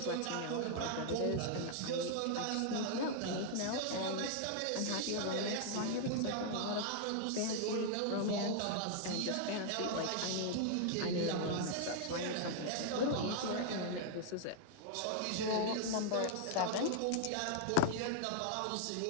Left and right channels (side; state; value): both; different; correlation 0.00